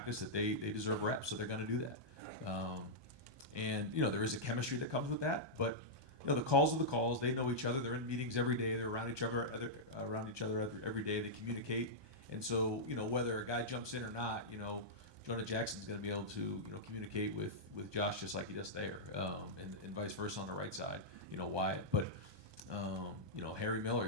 that they deserve reps, so they're going to do that. And there is a chemistry that comes with that, but the calls are the calls. They know each other. They're in meetings every day. They're around each other every day. They communicate. And so, whether a guy jumps in or not, Jonah Jackson's going to be able to, communicate with Josh just like he does there, and vice versa on the right side, Wyatt. But, Harry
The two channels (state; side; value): late; left; 1.2 ms